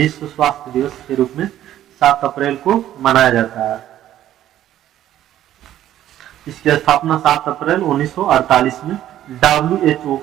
स्वास्थ्य दिवस के रूप में 7 अप्रैल को मनाया जाता है। इसकी स्थापना 7 अप्रैल 1948 में WHO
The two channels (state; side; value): quieter; left; 12.4 dB